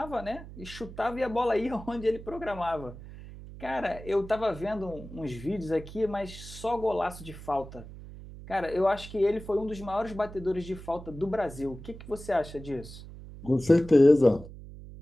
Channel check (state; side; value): noise; right; hum, 14 dB below the sound